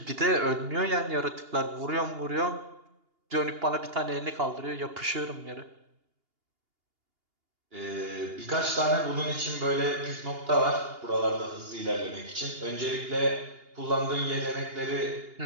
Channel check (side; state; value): left; late; 2.8 ms